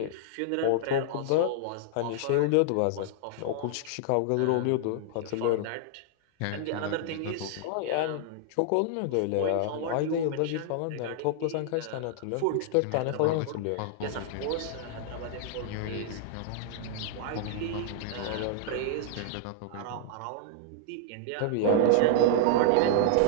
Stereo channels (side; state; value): both; different; correlation -0.01